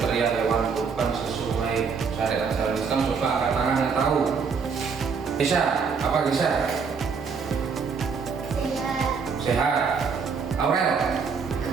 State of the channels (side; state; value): left; quieter; 5.6 dB